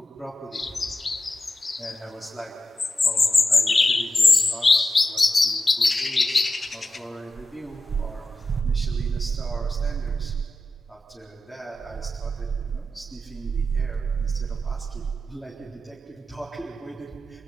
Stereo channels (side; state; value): both; normal; correlation 0.91